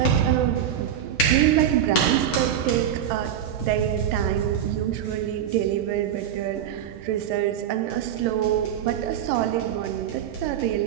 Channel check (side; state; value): left; quieter; 9.6 dB